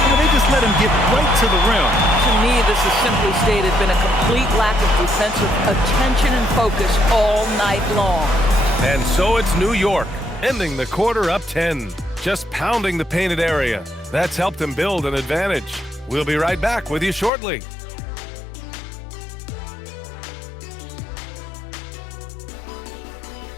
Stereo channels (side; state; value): right; drops out; at 17.3 s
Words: They just let him get right to the rim. To me, this has simply stated been a complete lack of defensive attention and focus all night long. And so it's New York, ending the quarter up 10. Just pounding the painted area. That's helped them build an advantage. We'll be right back with you shortly.